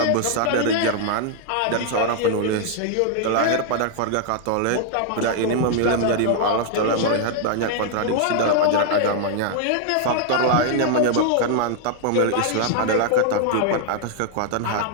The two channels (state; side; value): different; both; correlation 0.00